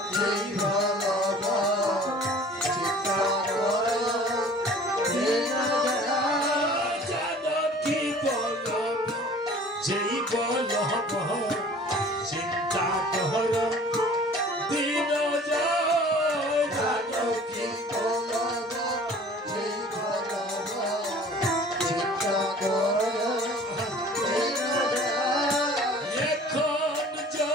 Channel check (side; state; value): both; normal; correlation 0.47